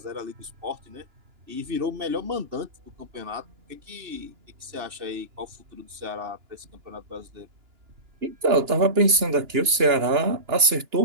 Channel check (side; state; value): left; late; 2.9 ms